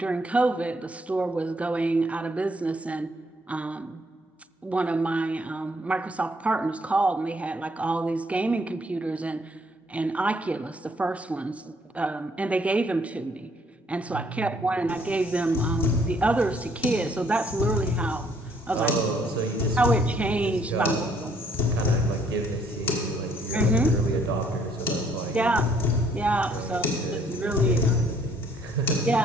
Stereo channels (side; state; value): both; normal; correlation 0.66